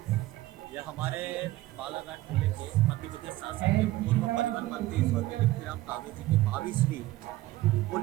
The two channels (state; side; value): quieter; left; 16.8 dB